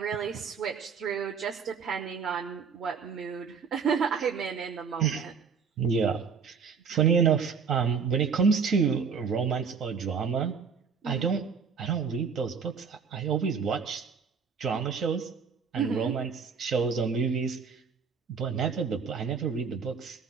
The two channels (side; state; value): left; quieter; 6.0 dB